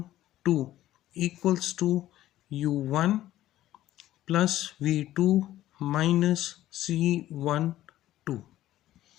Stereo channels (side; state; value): right; quieter; 14.1 dB